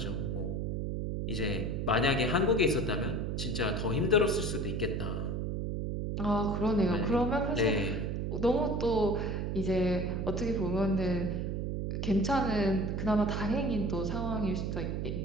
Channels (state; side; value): noise; right; hum, 1 dB below the sound